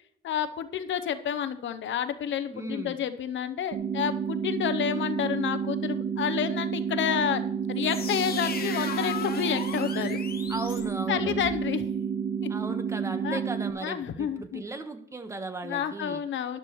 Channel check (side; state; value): both; normal; correlation 0.24